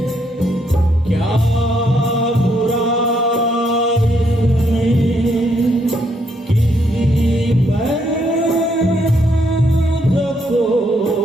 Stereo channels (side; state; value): both; normal; correlation 0.73